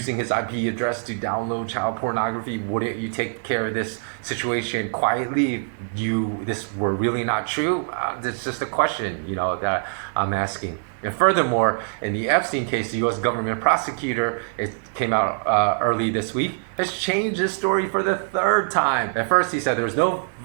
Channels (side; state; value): left; silent; digital silence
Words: his IP address to download child pornography. Wouldn't you take care of this situation quietly if this were really not true? It's just a question, that I'm asking. And furthermore, in the Epstein case, the U.S. government prosecutor, it came out early this week, has changed his story for the third time. At first, he said there was no